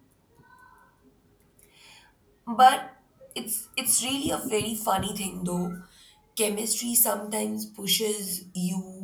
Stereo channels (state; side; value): identical; both; correlation 1.00